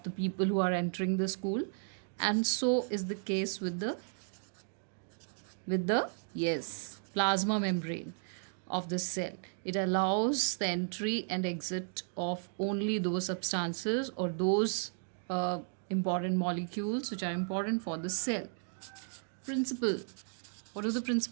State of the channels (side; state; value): left; silent; 55 dB below the other